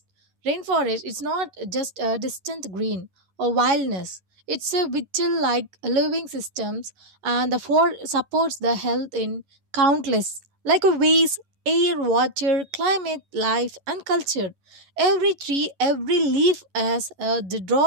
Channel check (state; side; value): late; left; 11 ms